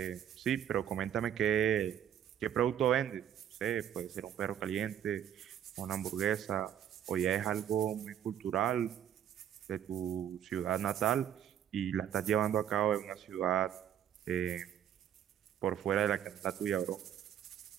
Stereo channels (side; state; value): left; quieter; 10.0 dB